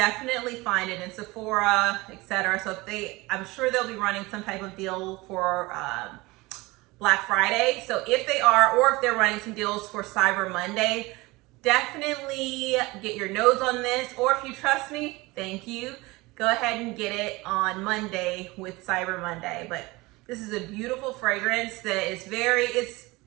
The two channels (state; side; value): quieter; left; 22.3 dB